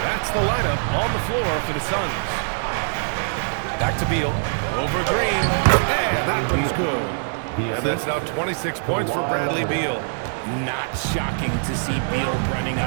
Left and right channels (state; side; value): silent; left; digital silence